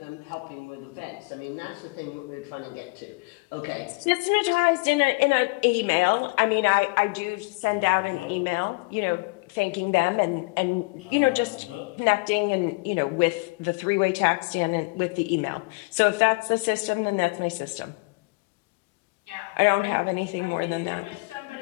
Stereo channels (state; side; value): quieter; right; 28.7 dB